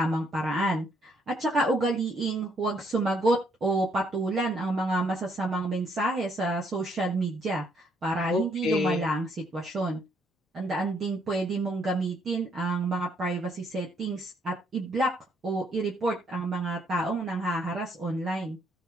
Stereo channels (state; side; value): normal; both; correlation 0.70